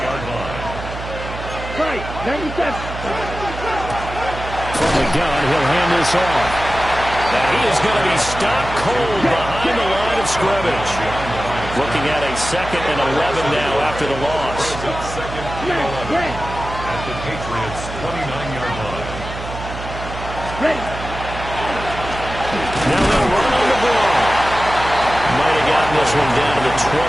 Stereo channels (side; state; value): right; noise; hum, 9 dB below the sound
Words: line. Right, 97. From the gun, he'll hand this off. And he is going to be stopped cold behind the line of scrimmage. Looking at a 2nd and 11 now after the loss. Second and 11 at the Patriots' 29-yard line. Ready. Now they'll run on the ball. Might have gotten this one down to the